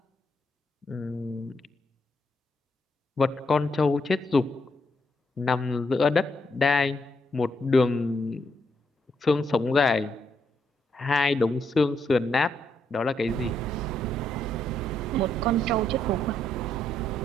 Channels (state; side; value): normal; both; correlation 0.77